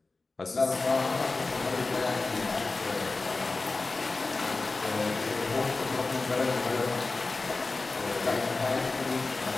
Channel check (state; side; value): quieter; right; 3.6 dB